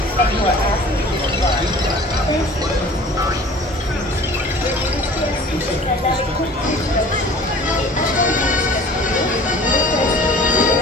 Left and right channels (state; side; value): normal; both; correlation 0.45